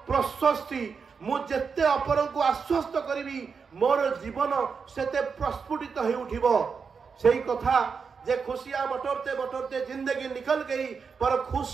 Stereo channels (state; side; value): quieter; left; 5.6 dB